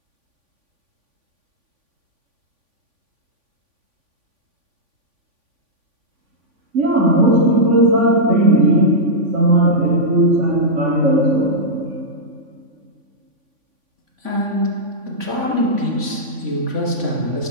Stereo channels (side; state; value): left; late; 3.5 ms